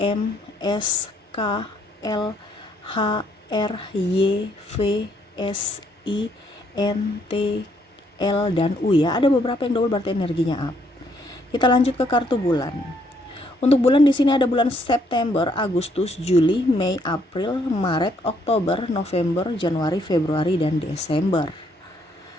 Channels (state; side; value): normal; both; correlation 0.70